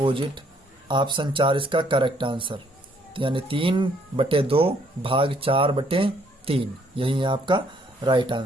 ऑप्शन 4 इसका करेक्ट आंसर। तो यानी 3/2 भाग 4/3 यही है आपका राइट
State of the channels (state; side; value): normal; both; correlation 0.66